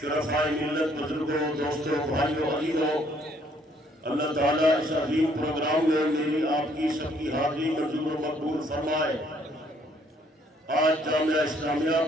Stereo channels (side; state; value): both; normal; correlation 0.65